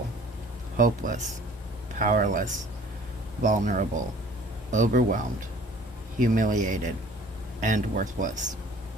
hopeless, powerless, vulnerable, overwhelmed, humiliated, and worthless.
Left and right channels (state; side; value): normal; both; correlation 0.51